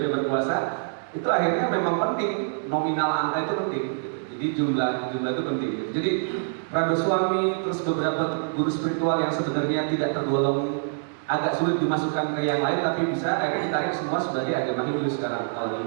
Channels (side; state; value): left; silent; digital silence